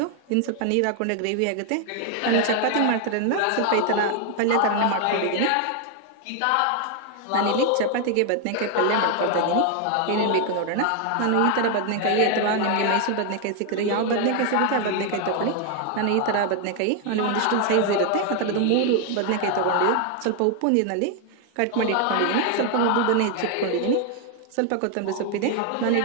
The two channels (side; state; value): both; different; correlation 0.00